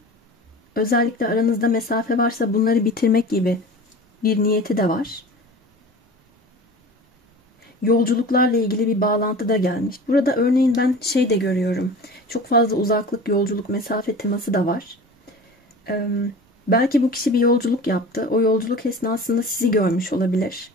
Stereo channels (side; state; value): both; normal; correlation 0.37